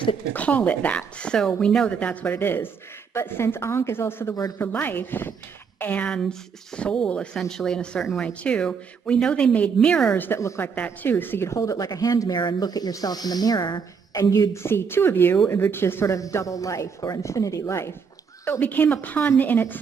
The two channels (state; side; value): quieter; left; 6.0 dB